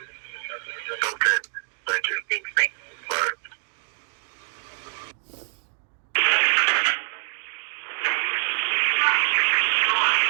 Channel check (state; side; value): silent; left; 62 dB below the other